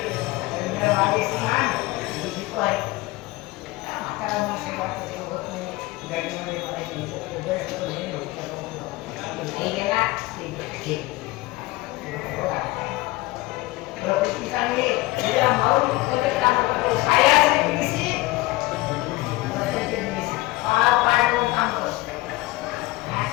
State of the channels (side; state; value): right; quieter; 20.1 dB